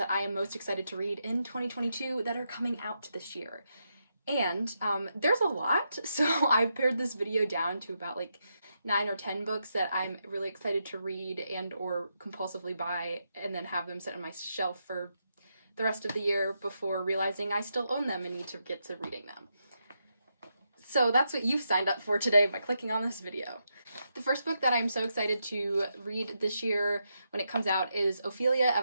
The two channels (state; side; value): inverted; both; correlation -0.83